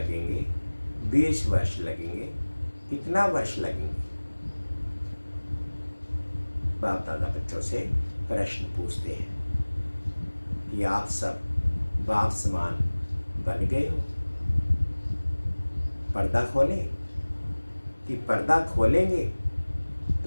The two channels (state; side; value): inverted; both; correlation -1.00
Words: 20 वर्ष लगेंगे, कितना वर्ष लगेंगे? बाप दादा बच्चों से प्रश्न पूछते हैं कि आप सब बाप समान बन गए हो? पर्दा खोलें कि पर्दा खोलेंगे